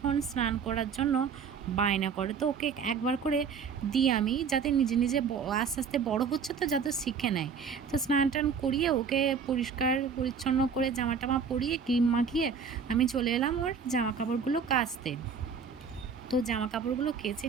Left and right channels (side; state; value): left; quieter; 6.1 dB